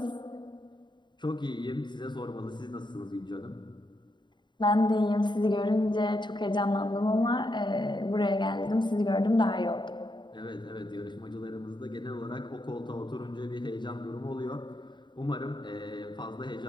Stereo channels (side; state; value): right; late; 0.22 ms